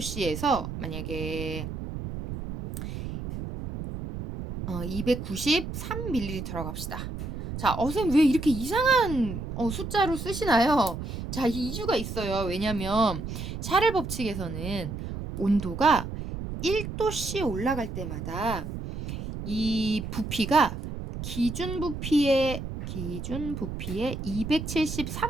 만약에 293ml라고 합시다. 자, 선생님 왜 이렇게 이상한 숫자로 쓰시나요? 자, 이유가 있어요. 왜냐면 샤를 법칙에서는 온도가 1도씨 올라갈 때마다 이 부피가 기준 부피의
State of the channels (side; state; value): right; noise; rumble, 7 dB below the sound